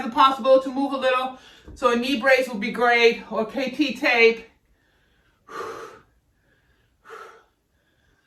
a possibility to move a little. So a knee brace would be great, or KT tape.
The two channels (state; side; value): identical; both; correlation 1.00